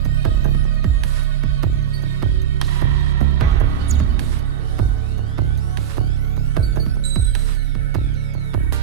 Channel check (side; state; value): left; quieter; 9.8 dB